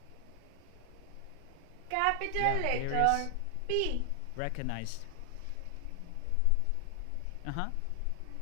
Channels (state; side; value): different; both; correlation 0.00